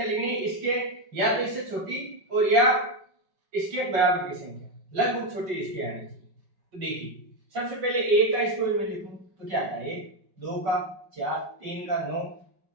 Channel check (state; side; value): late; left; 5.3 ms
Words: लिखनी है, इसके या तो इससे छोटी और या इसके बराबर की संख्या, लगभग छोटी इसके आनी चाहिए। तो देखिए सबसे पहले 1 का स्क्वायर में लिखूं तो क्या आता है 1, 2 का 4, 3 का 9,